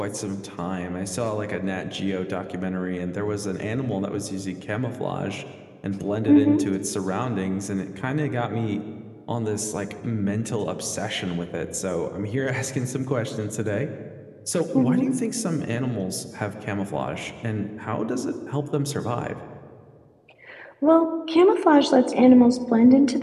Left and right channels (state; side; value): identical; both; correlation 1.00